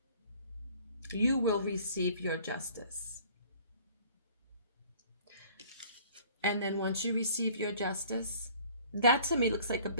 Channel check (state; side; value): inverted; both; correlation -0.52